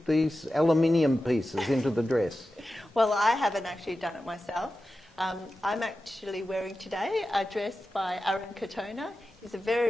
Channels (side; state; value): both; normal; correlation 0.93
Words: these aluminium pieces into the dress. Well, I haven't actually done it myself. I'm actually wearing today a dress by Aaron Katona. He's a